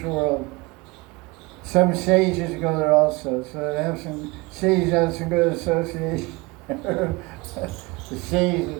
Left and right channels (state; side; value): quieter; left; 24.6 dB